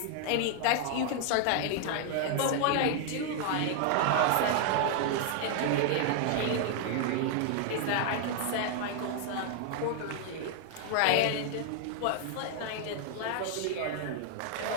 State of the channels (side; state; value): both; different; correlation 0.00